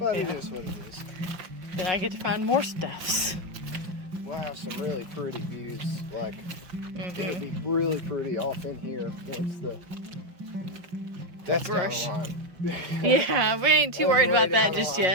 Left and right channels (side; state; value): left; late; 5.6 ms